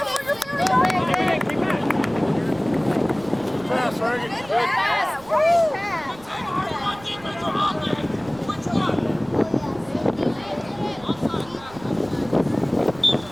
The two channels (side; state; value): right; noise; rumble, 21 dB below the sound